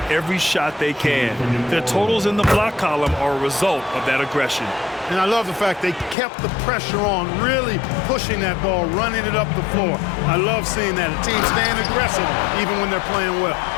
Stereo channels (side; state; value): right; drops out; at 6.2 s